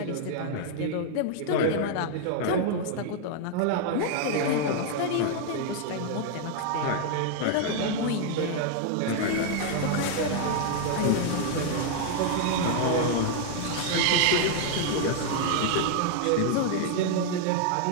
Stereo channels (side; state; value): both; different; correlation 0.00